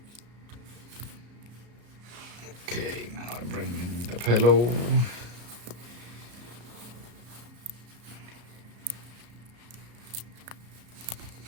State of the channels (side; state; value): left; late; 34 ms